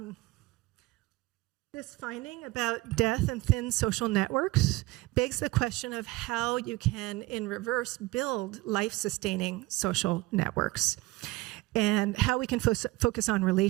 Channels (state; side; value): quieter; left; 20.3 dB